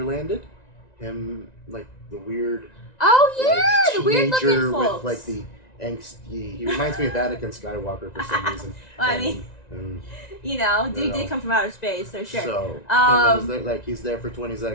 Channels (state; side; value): late; right; 1.9 ms